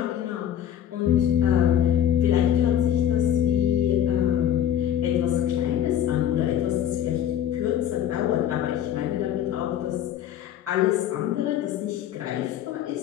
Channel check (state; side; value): quieter; right; 10.3 dB